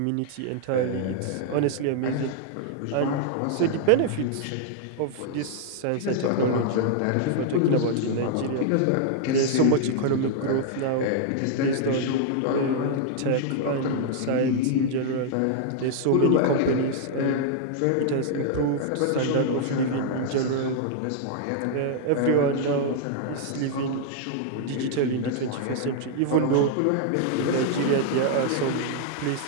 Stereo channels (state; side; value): different; both; correlation -0.01